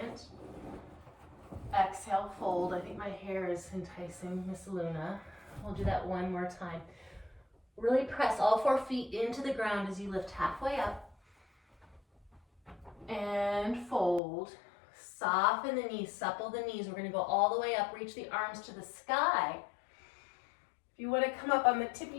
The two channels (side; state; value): right; drops out; at 14.2 s